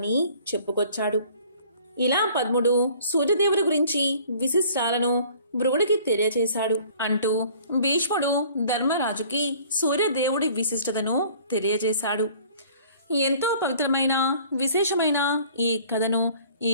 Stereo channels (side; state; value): both; inverted; correlation -0.52